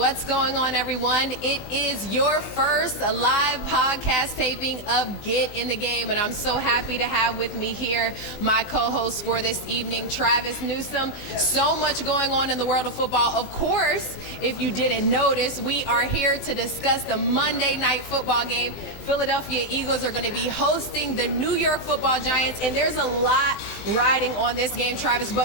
going on, everyone? It is your first live podcast taping of Get in the Game, and I'm so happy to have with me here my co-host for this evening, Travis Newsome. So much going on in the world of football. Of course, if you didn't notice, we are here to discuss the Monday night football game. Philadelphia Eagles are going to be hosting the New York Football Giants, and there's a lot riding on this game, Travis. But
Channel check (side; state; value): right; late; 20 ms